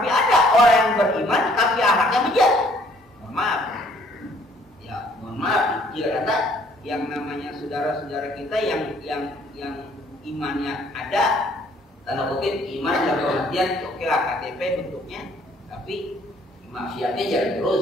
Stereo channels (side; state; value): both; normal; correlation 0.61